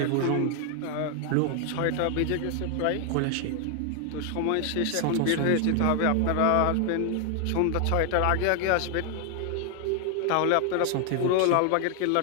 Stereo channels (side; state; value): both; different; correlation 0.00